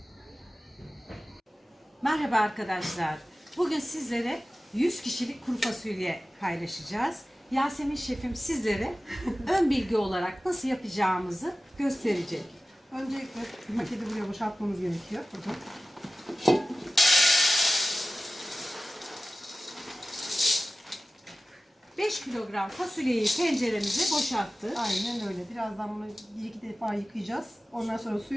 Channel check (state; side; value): normal; both; correlation 0.96